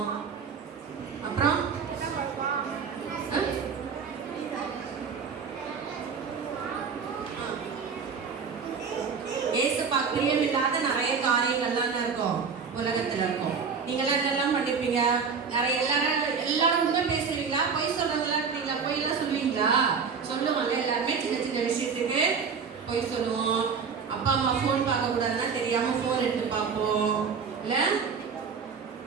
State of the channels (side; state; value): left; quieter; 5.8 dB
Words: அப்புறம் ஏசப்பா பிரியம் இல்லாத நிறைய காரியங்கள்லாம் இருக்கும் உலகத்துல இருக்கும். நீங்களாம் என்னெல்லாம் பண்ணிருப்பீங்க? நிறைய எல்லாரும் உண்மை பேசுவீங்களா? பொய் சொல்றவங்களா இருக்கீங்களா? பொய் எல்லாம் சொல்லுவீங்களா? சொல்லுவாங்கல்ல, எல்லாருமே சின்ன சின்ன விஷயத்துக்கு பொய் சொல்லுவோம். அப்பா அம்மா ஃபோன் பார்க்க கூடாதுன்னா தெரியாம ஃபோன் எடுத்து பார்ப்போம் இல்ல.